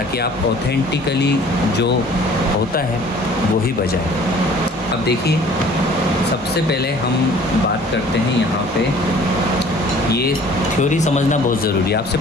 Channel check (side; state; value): both; normal; correlation 0.51